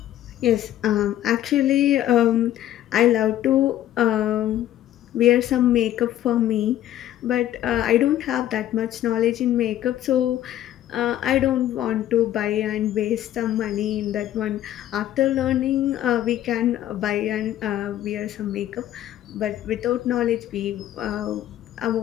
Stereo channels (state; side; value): quieter; right; 12.6 dB